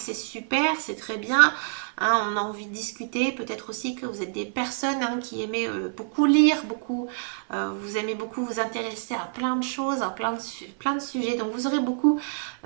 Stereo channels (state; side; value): silent; left; 56 dB below the other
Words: super, c'est très bien. Hein, on a envie de discuter, peut-être aussi que vous êtes des personnes, hein, qui aimez beaucoup lire, beaucoup, vous aimez beaucoup vous intéresser à plein de choses, à plein de sujets. Donc vous aurez beaucoup